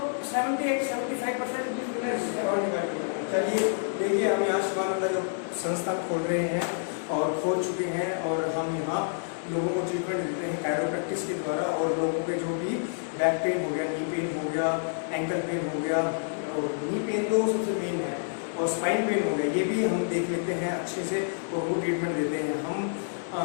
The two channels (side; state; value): right; silent; 59 dB below the other